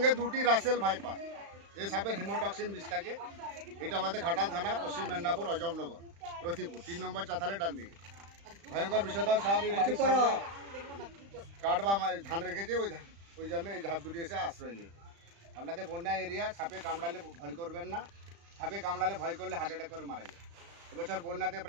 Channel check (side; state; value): left; late; 35 ms